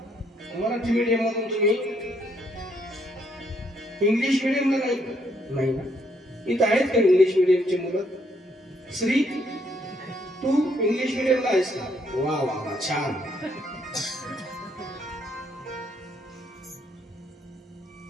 मराठी मीडियम मधून? तुम्ही इंग्लिश मीडियमला नाही ना? इथं आहेत का इंग्लिश मीडियमची मुलं? श्री, तू इंग्लिश मीडियमला आहेस का? वा वा वा, छान.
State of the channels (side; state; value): both; normal; correlation 0.71